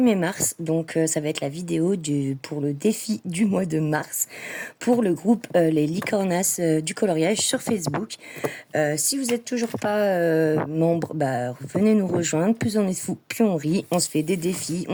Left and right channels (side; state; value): both; identical; correlation 1.00